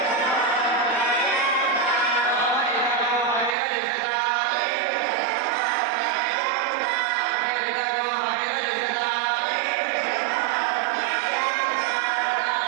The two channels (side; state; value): left; drops out; at 3.6 s